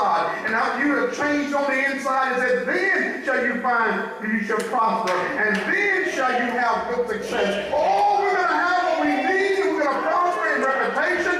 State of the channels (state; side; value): identical; both; correlation 1.00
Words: And after you have changed on the inside, it says, then shall you find you shall prosper, and then shall you have good success. Oh, we're going to have what we need, and we're going to prosper in